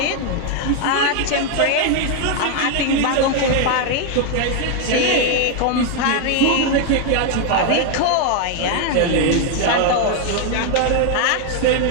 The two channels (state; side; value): different; both; correlation 0.01